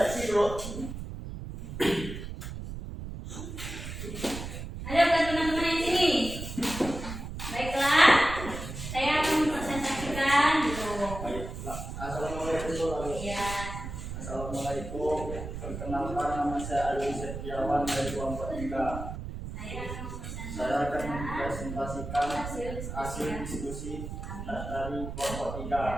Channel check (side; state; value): right; noise; rumble, 8 dB below the sound